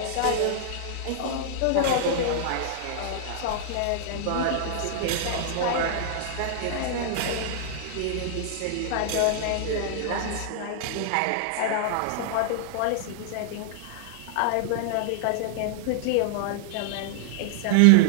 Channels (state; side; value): different; both; correlation -0.01